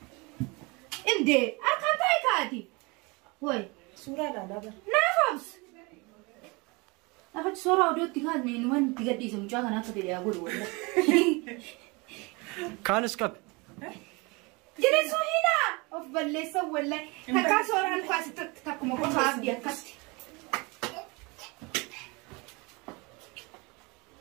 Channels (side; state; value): left; quieter; 27.2 dB